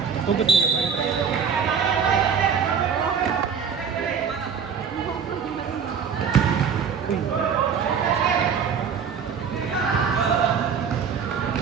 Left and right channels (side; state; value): left; quieter; 6.7 dB